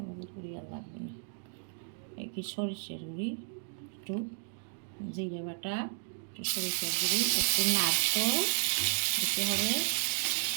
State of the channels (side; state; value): left; silent; digital silence